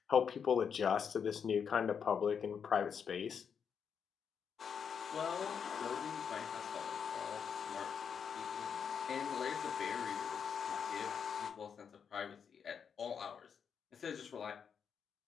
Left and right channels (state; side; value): quieter; right; 7.0 dB